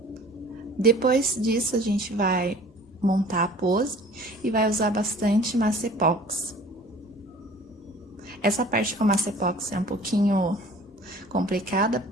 Depois disso, a gente vai montar a pose e vai usar bastante massa epox. Essa parte com a massa epox é um pouquinho complicada,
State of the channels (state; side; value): normal; both; correlation 0.48